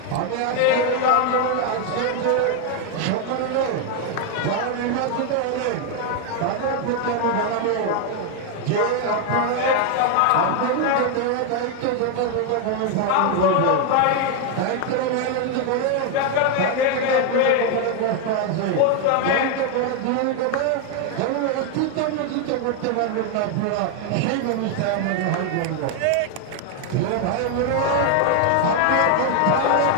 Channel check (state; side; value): different; both; correlation 0.01